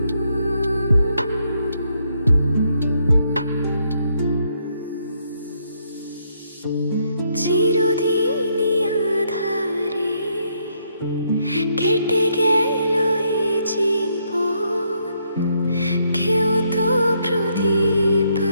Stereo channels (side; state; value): both; inverted; correlation -0.74